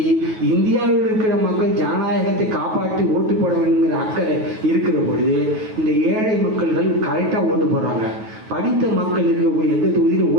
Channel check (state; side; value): late; left; 9.3 ms